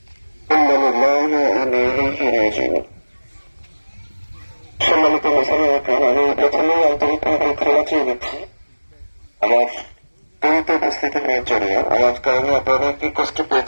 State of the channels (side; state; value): both; inverted; correlation -1.00